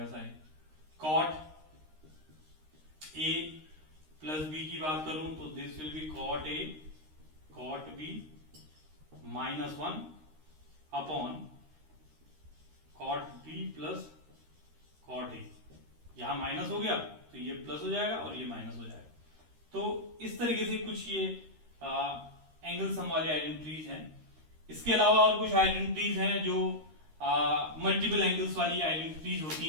sine. Cot A plus B की बात करूं तो this will be cot A cot B minus 1 upon cot B plus cot A. यहां माइनस हो गया तो ये प्लस हो जाएगा और ये माइनस हो जाएगा। तो इस तरीके से कुछ ये एंगल सम वाली आइडेंटिटीज हैं। इसके अलावा और कुछ आइडेंटिटीज हैं जो मल्टीपल एंगल्स वाली आइडेंटिटीज होती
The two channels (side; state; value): left; late; 13 ms